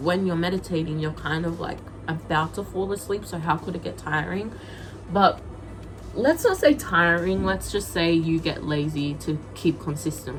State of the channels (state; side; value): identical; both; correlation 1.00